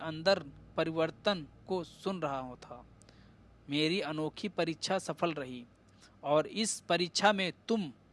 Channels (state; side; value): identical; both; correlation 1.00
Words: परिवर्तन को सुन रहा था। मेरी अनोखी परीक्षा सफल रही और इस परीक्षा में